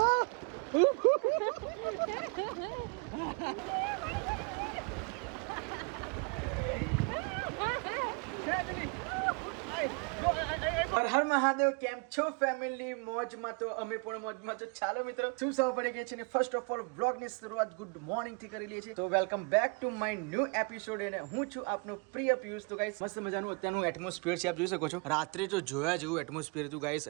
હર મહાદેવ કેમ છો ફેમિલી મોજમાં તો અમે પણ મોજમાં તો ચાલો મિત્રો શું સૌ પડી ગઈ છે ને ફર્સ્ટ ઓફ ઓલ વ્લોગ ની શરૂઆત ગુડ મોર્નિંગ થી કરી લઈએ છીએ તો welcome back to my new episode અને હું છું આપનો પ્રિય પિયુષ તો ગાઈસ મસ્ત મજાનું અત્યારનું એટમોસ્ફિયર છે આપ જોઈ શકો છો રાત્રે તો જોયા જેવું એટમોસ્ફિયર હતું ગાઈસ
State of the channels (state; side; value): quieter; left; 33.2 dB